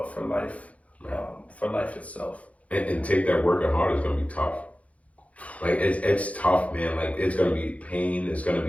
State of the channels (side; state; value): right; late; 0.066 ms